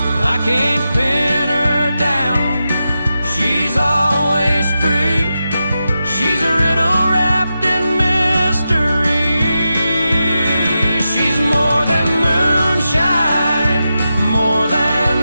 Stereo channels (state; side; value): inverted; both; correlation -0.89